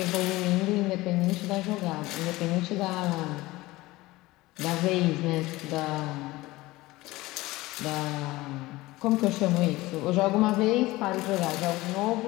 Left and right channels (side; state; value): right; quieter; 19.4 dB